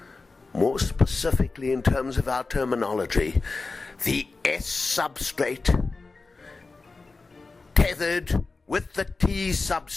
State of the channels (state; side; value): quieter; right; 3.9 dB